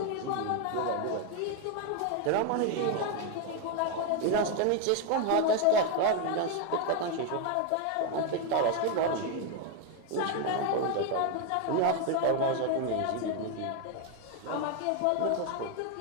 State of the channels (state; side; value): different; both; correlation 0.01